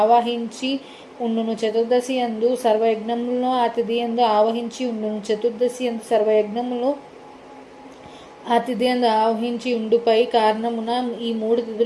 ఆవాహించి ఉండును. చతుర్దశి యందు సర్వయజ్ఞములను ఆ తిథి యందు ఆవహించి ఉండును. చతుర్దశి యందు సర్వయజ్ఞములు ఆ తిథి యందు ఆవహించి ఉండుపై కారణమున ఈ 3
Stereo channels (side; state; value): both; identical; correlation 1.00